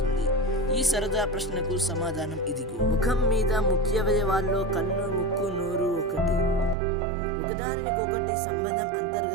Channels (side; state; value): left; drops out; at 6.8 s